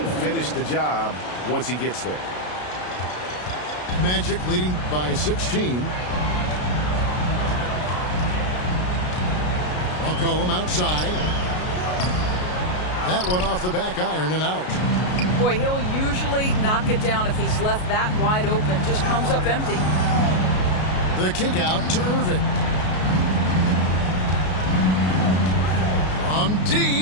finished the job once he gets there. Magic leading by 16. McCollum outside. That one off the back iron and out. Boy, he'll usually knock it down if he's left that wide open. Just comes up empty. The kick out to Irving. From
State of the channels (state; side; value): late; right; 33 ms